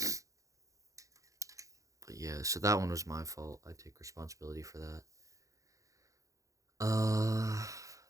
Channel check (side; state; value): left; late; 0.16 ms